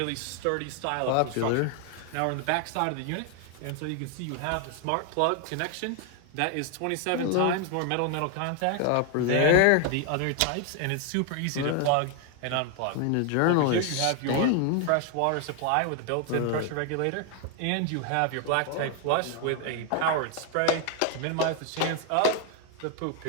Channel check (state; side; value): different; both; correlation 0.00